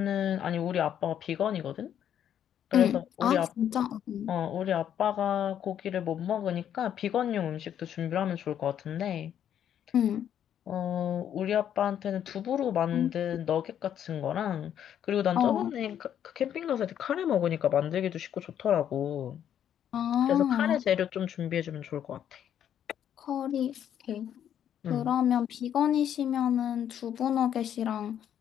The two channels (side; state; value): right; quieter; 9.8 dB